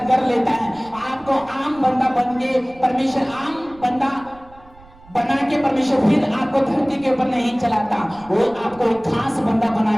कर लेता है। आपको आम बंदा बन के परमेश्वर, आम बंदा बना के परमेश्वर फिर आपको धरती के ऊपर नहीं चलाता, वो आपको एक खास बंदा बना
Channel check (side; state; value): right; noise; rumble, 25 dB below the sound